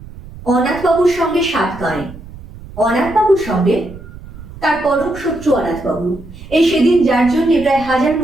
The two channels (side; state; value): right; noise; rumble, 16 dB below the sound